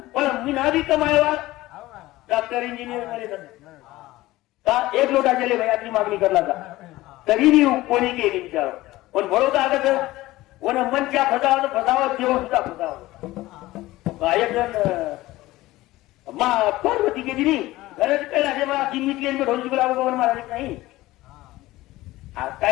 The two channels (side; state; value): right; quieter; 17.7 dB